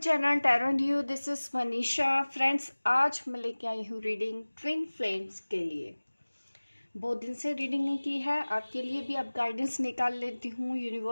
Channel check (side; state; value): both; inverted; correlation -1.00